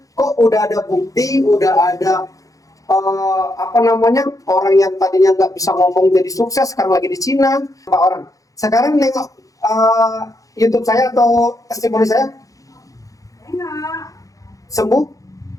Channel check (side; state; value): right; late; 0.17 ms